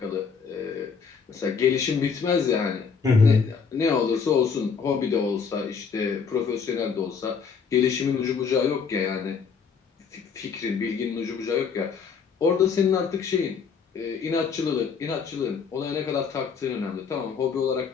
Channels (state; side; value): quieter; right; 5.9 dB